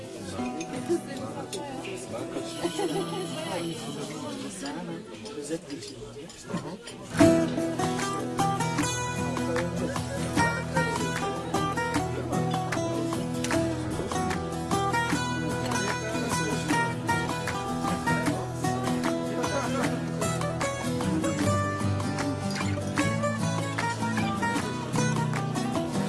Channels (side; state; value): both; identical; correlation 1.00